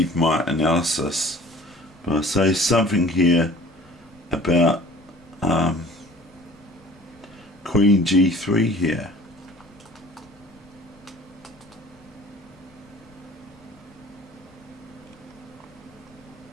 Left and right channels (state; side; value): noise; left; rumble, 28 dB below the sound